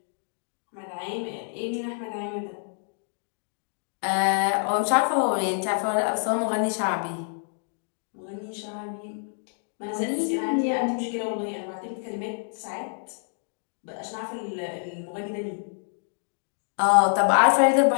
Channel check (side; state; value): right; silent; digital silence